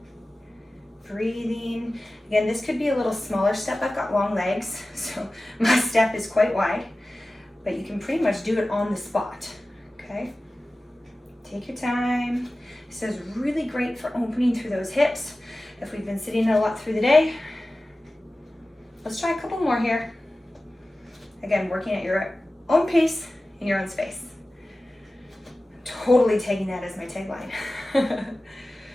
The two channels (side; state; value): both; normal; correlation 0.96